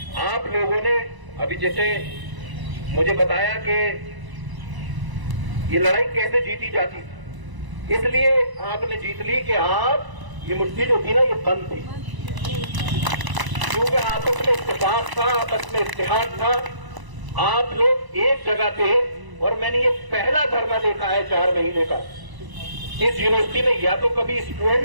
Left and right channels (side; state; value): left; late; 1.0 ms